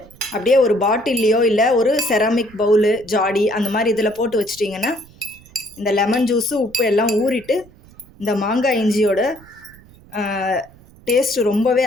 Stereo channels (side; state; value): right; noise; rumble, 24 dB below the sound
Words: அப்படியே ஒரு பாட்டில்லையோ இல்லை ஒரு செராமிக் பவுலு, ஜாடி அந்த மாதிரி இதில் போட்டு வச்சிட்டிங்கன்னா இந்த லெமன் ஜூஸு, உப்பு எல்லாம் ஊறிட்டு இந்த மாங்காய் இஞ்சியோட டேஸ்ட்டு ரொம்பவே